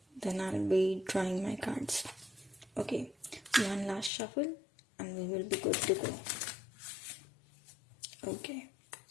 I'll be drawing my cards. Okay, one last shuffle and we will be good to go. Okay,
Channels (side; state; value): right; drops out; at 4.1 s